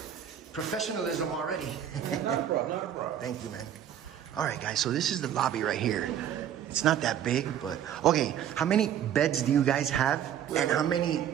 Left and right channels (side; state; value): left; quieter; 9.9 dB